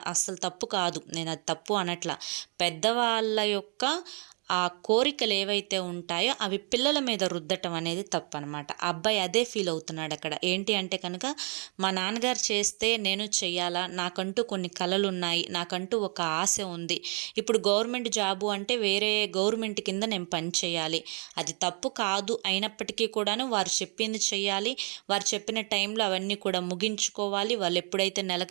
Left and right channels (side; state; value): left; quieter; 37.7 dB